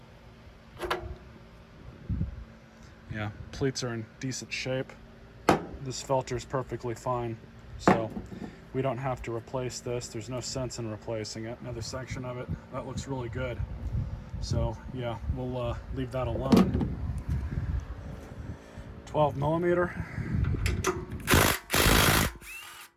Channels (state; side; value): identical; both; correlation 1.00